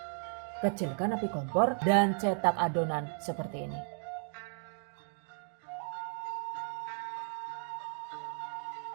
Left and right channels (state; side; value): silent; left; 55 dB below the other